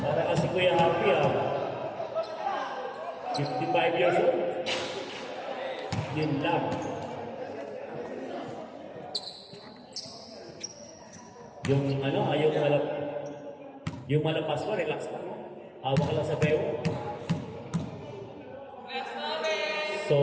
Para kasi Kuya Happy, 55 years old. Yun lang. Yung malapas mo, relax lang. Hawak ka lang sa bewo.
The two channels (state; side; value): identical; both; correlation 1.00